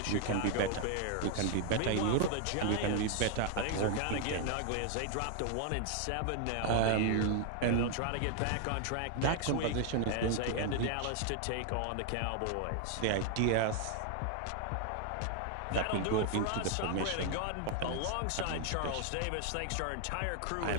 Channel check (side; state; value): both; different; correlation 0.00